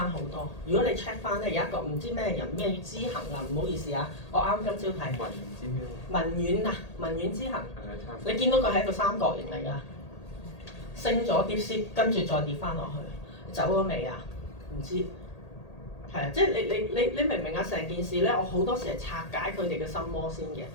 好多。如果你 check 翻咧，有一個唔知咩人咩知行啊，唔好意思啊，我啱今朝睇文遠知行，你見到佢係一個三角形嚟㗎，升咗 DeepSeek，跟住再跌翻落去，走咗未啊？唔知。係啊，即係你明唔明啊？成件事咧，我好多時係拆解佢哋嘅心魔先嘅，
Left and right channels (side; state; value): right; late; 1.8 ms